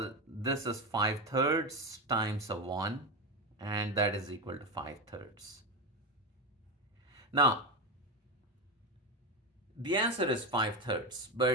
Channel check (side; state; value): both; normal; correlation 0.16